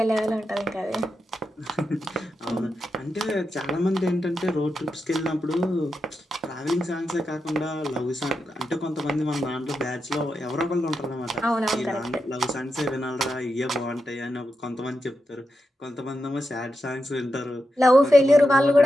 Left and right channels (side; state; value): both; normal; correlation 0.87